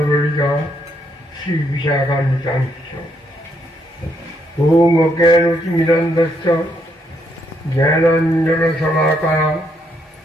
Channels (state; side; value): normal; both; correlation 0.74